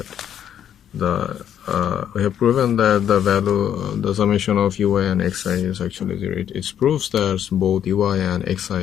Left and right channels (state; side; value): quieter; right; 9.6 dB